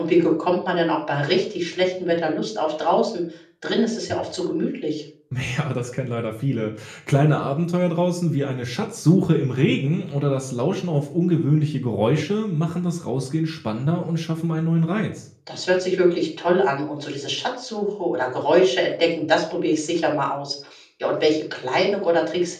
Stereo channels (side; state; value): both; identical; correlation 1.00